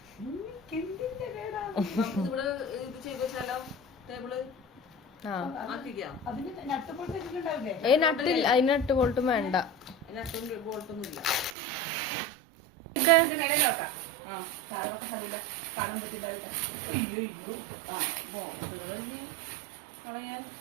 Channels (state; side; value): drops out; left; at 11.6 s